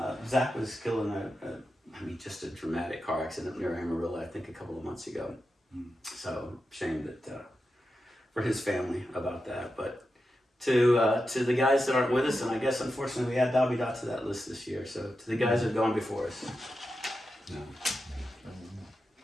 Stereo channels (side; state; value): both; normal; correlation 0.89